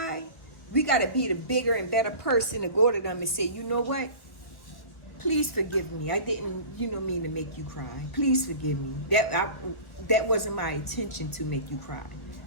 we got to be the bigger and better person to go to them and say, you know what? Please forgive me. I didn't, mean to make you cry. Please forgive me. That wasn't my intention to make you cry.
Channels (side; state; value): right; late; 1.2 ms